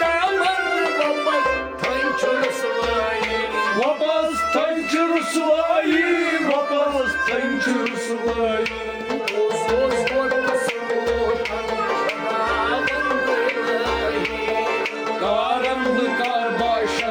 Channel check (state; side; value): identical; both; correlation 1.00